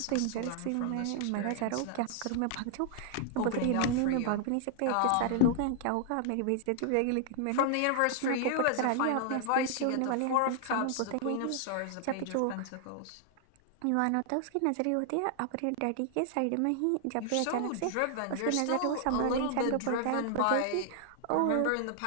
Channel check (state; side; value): different; both; correlation 0.00